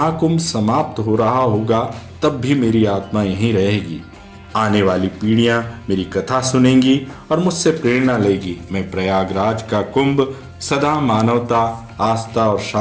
समाप्त हो रहा होगा तब भी मेरी आत्मा यहीं रहेगी। आने वाली पीढ़ियां मेरी कथा सुनेंगी और मुझसे प्रेरणा लेगी। मैं प्रयागराज का कुंभ सदा मानवता, आस्था और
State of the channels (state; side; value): identical; both; correlation 1.00